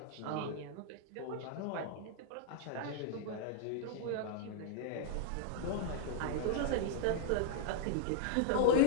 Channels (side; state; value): both; different; correlation -0.01